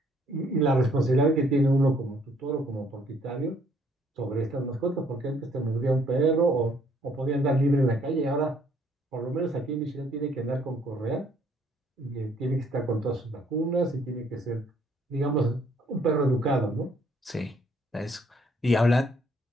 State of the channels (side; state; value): both; normal; correlation 0.64